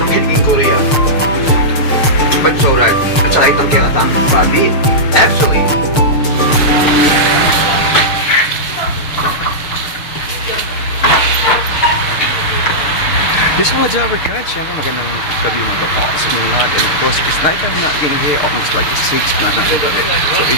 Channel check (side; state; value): right; late; 6.6 ms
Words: kiligin Korean. But so right. At saka itong kinatang babi. Actually, This mga Java guys, syempre magandang gabi mga kapos sa inyo lahat. And of course, it's night time na in here, almost like 6 na ng gabi. So